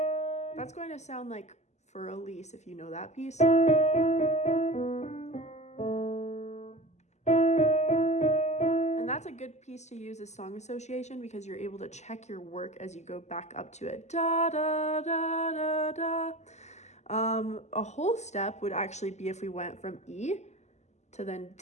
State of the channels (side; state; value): right; late; 0.33 ms